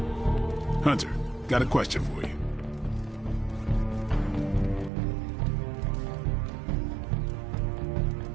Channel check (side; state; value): left; drops out; at 4.9 s